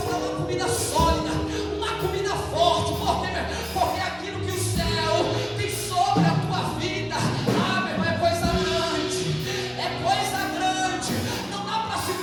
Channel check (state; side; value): identical; both; correlation 1.00